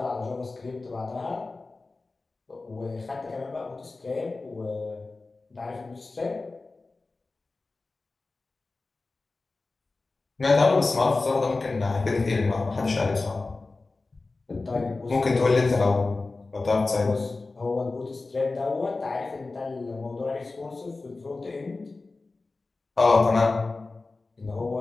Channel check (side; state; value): right; quieter; 3.6 dB